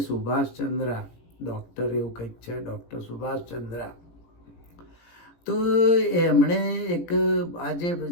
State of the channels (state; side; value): late; right; 17 ms